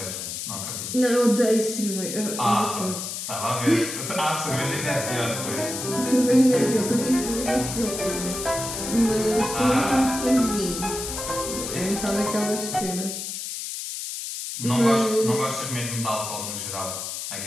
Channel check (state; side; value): noise; left; hiss, 6 dB below the sound